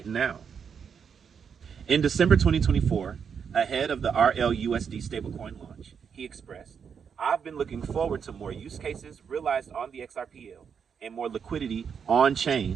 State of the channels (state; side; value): quieter; left; 6.9 dB